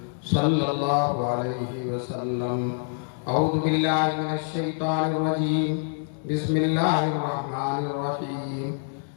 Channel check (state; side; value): silent; right; digital silence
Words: صلى الله عليه وسلم. أعوذ بالله من الشيطان الرجيم. بسم الله الرحمن الرحيم.